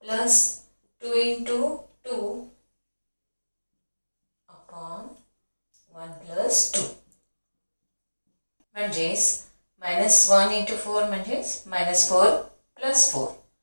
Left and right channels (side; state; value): both; inverted; correlation -1.00